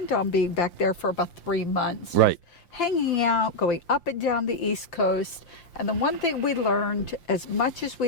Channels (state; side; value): late; right; 5.8 ms